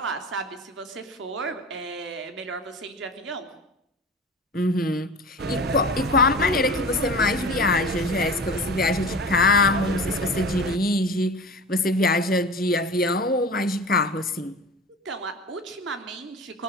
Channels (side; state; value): both; normal; correlation 0.35